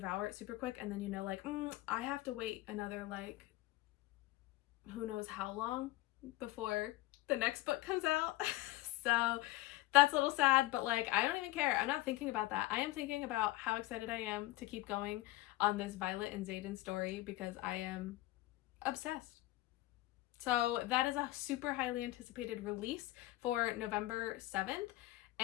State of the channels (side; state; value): right; quieter; 18.2 dB